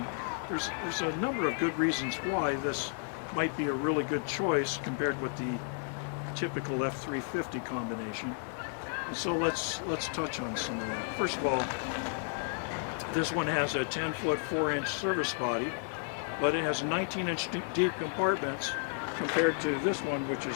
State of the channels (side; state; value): right; silent; 56 dB below the other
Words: there's a number of good reasons why this might be a really good choice compared with the typical F350 combination. And so let's touch on some of that. First of all, this one has a 10-foot 4-inch service body, but it has 19-inch deep compartments compared to this one, which